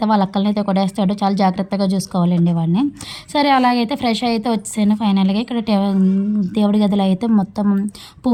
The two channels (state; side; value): identical; both; correlation 1.00